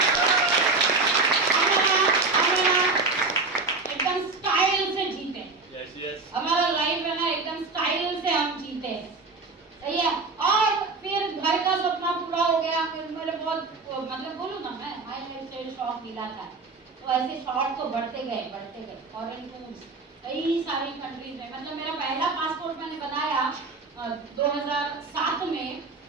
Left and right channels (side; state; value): left; quieter; 3.8 dB